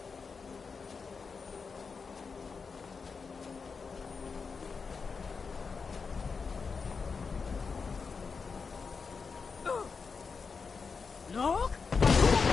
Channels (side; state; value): right; quieter; 5.1 dB